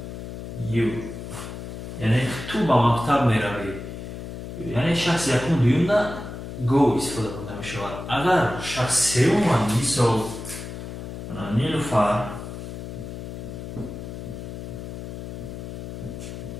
you یعنی تو با مکتب میروی یعنی شخص یکم دویم نه go استفاده برده می شود. اگر شخص سوم مثال نیلوفر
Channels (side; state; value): left; noise; hum, 9 dB below the sound